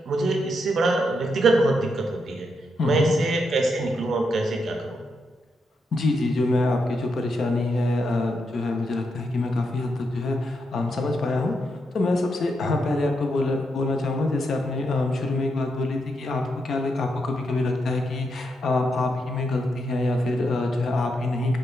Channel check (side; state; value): both; normal; correlation 0.82